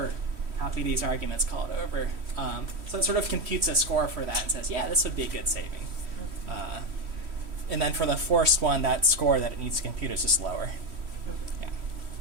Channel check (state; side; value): late; left; 3.1 ms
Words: copy these arguments, call it over. So it sort of computes a score for that and says, yeah, this would be a good saving. And then for the forced one, that score that it needs to compute is just lower. Yeah.